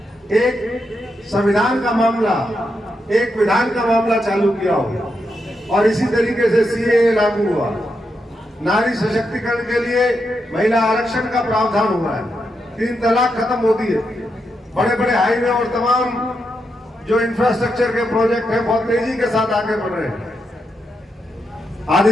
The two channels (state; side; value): normal; both; correlation 0.84